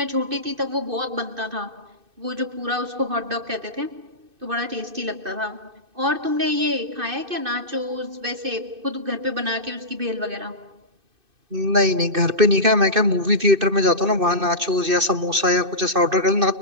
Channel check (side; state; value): left; late; 2.6 ms